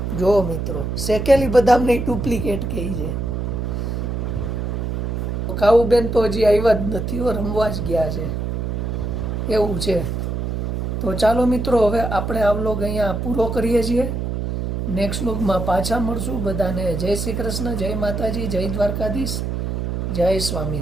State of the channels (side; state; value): right; noise; hum, 2 dB below the sound